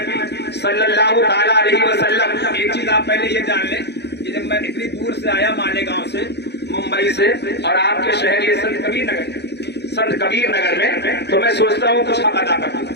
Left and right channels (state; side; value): late; right; 0.49 ms